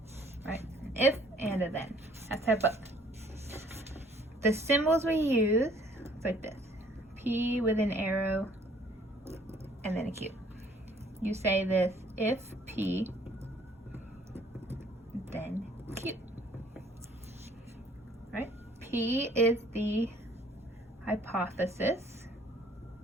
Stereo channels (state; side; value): normal; both; correlation 0.59